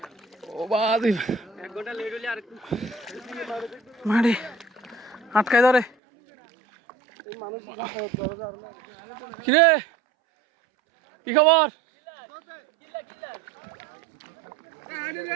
ও বাদি মাটি আটকায় ধরে। কিরে কি খবর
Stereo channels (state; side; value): drops out; left; at 5.9 s